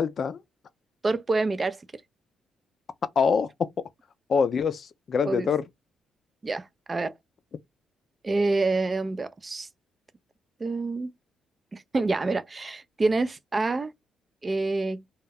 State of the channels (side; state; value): both; normal; correlation 0.86